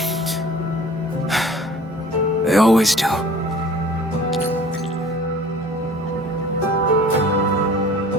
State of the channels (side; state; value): both; normal; correlation 0.47